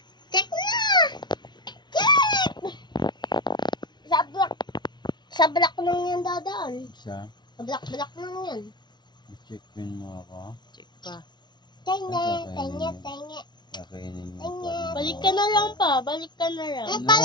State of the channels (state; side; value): late; right; 0.21 ms